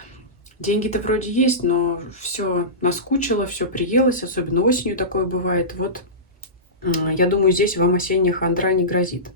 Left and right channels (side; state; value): both; normal; correlation -0.19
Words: деньги-то вроде есть, но все наскучило, все приелось, особенно осенью такое бывает. Вот я думаю, здесь вам осенняя хандра не грозит.